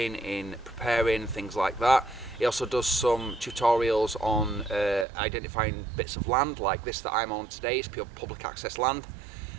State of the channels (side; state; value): left; drops out; at 5.1 s